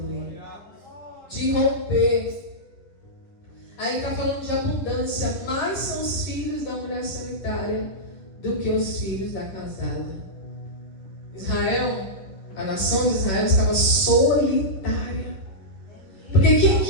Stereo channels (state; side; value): late; right; 10 ms